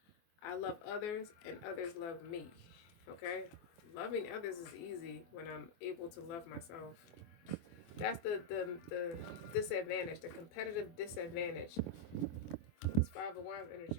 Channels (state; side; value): late; right; 24 ms